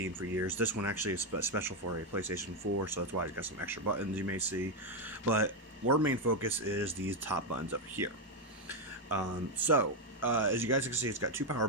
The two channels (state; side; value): normal; both; correlation 0.04